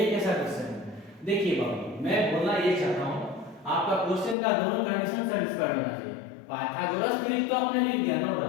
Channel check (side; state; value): right; drops out; at 4.4 s